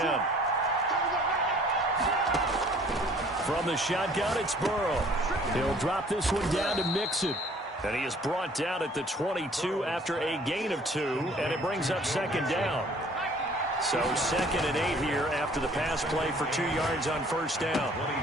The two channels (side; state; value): both; normal; correlation 0.55